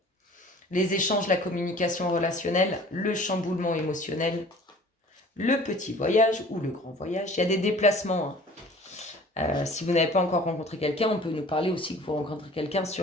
Les échanges, la communication relationnelle, le chamboulement émotionnel, le petit voyage ou le grand voyage. Il y a des déplacements. Si vous n'avez pas encore rencontré quelqu'un, on peut nous parler aussi que vous rencontrez quelqu'un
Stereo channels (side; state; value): both; normal; correlation 0.47